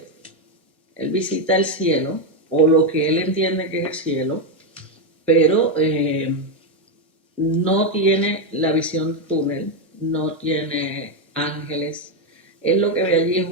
o lo que él entiende que es el cielo, pero no tiene la visión de túnel, no tiene ángeles. Él lo que ve allí es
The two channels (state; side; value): normal; both; correlation 0.05